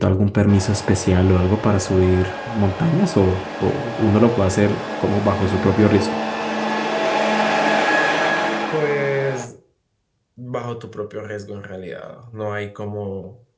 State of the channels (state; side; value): identical; both; correlation 1.00